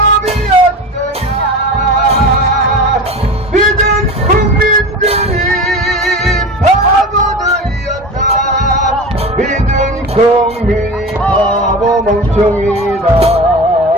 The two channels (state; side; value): normal; both; correlation 0.30